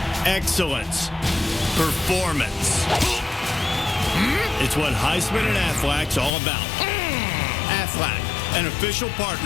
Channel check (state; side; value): drops out; right; at 6.4 s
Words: excellence, performance. It's what Heisman and Aflac's all about. Aflac, an official